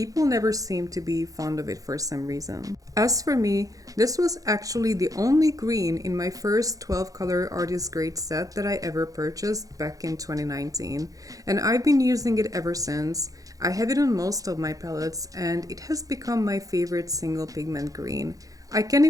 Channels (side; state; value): left; late; 0.17 ms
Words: never seem to be fond of it for some reason. As for me, this was actually the only green in my first 12 color artist grade set that I ever purchased back in 2019, and I've been using it ever since. I have it on most of my palettes and it has become my favorite single pigment green. I can't